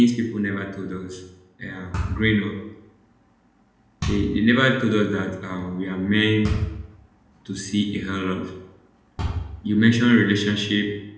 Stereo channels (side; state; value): both; identical; correlation 1.00